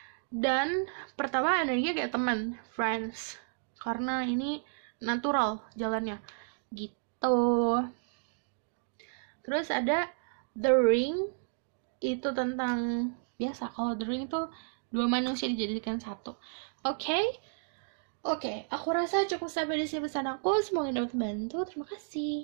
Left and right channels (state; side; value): silent; left; digital silence